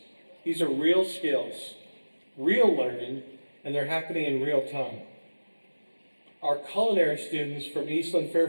These are real skills, real learning, and they're happening in real time. Our culinary students from Eastland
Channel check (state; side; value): inverted; both; correlation -1.00